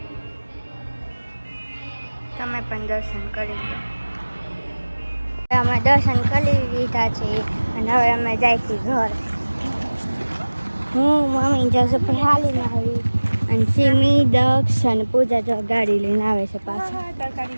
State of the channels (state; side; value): inverted; both; correlation -1.00